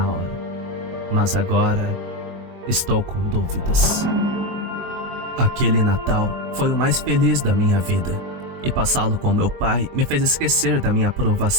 hora. Mas agora estou com dúvidas. Aquele Natal foi o mais feliz da minha vida, e passá-lo com meu pai me fez esquecer da minha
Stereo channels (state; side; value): late; left; 23 ms